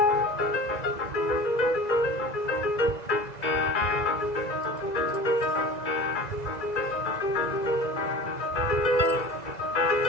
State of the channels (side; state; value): right; late; 2.0 ms